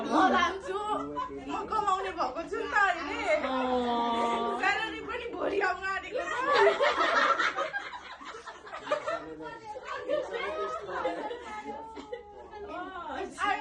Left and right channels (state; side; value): identical; both; correlation 1.00